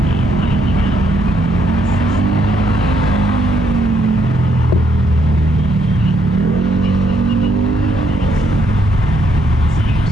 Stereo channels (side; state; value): both; normal; correlation 0.72